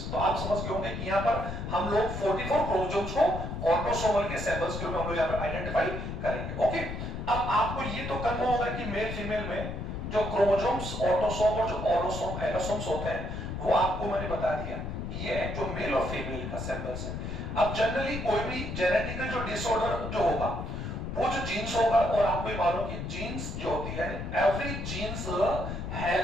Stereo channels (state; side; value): noise; left; rumble, 5 dB below the sound